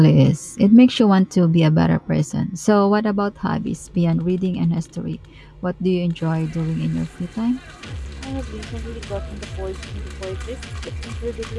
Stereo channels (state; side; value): identical; both; correlation 1.00